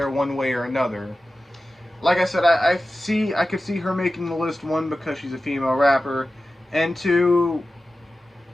one way or another. Like I said, I could see her making the list, one, because she's a female rapper, and two,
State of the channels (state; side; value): normal; both; correlation 0.94